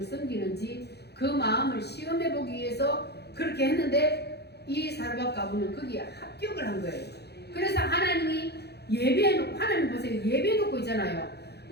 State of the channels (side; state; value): right; late; 0.48 ms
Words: 섬기는지 그 마음을 시험해 보기 위해서 그렇게 했는데, 이 사르밧 과부는 거기에 합격을 한 거예요. 그래서 하나님이 예배해놓고, 하나님 보세요, 예배해놓고 있잖아요.